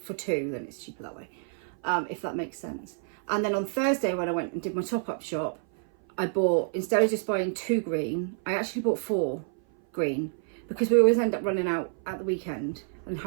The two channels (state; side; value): silent; left; 57 dB below the other